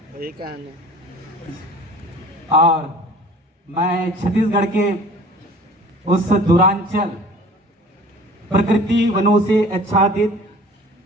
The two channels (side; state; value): both; normal; correlation 0.46